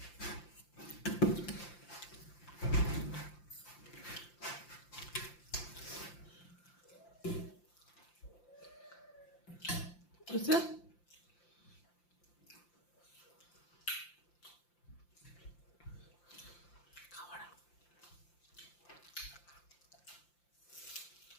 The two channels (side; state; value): right; late; 5.8 ms